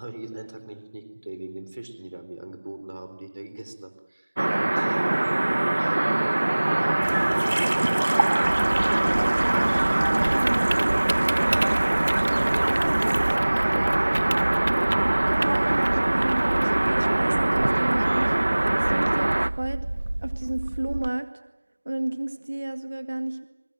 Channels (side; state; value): both; inverted; correlation -1.00